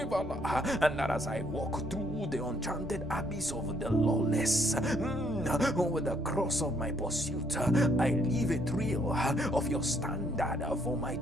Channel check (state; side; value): normal; both; correlation 0.69